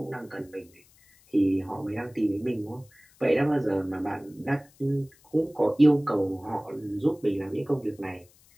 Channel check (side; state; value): left; noise; hiss, 29 dB below the sound